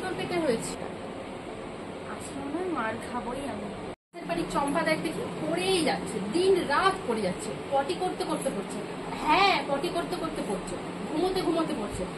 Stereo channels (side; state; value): both; identical; correlation 1.00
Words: তোর পেটে হয়েছি? আসলে মার খাবোই আমি। বাড়ির চম্পা দেখ দেখি পড়েই যাচ্ছে, দিন রাত পড়ে যাচ্ছে। পটি করতে করতে পড়ছে। হ্যাঁ, পটি করতে করতে পড়ছে, ঘুমোতে ঘুমোতে পড়ছে,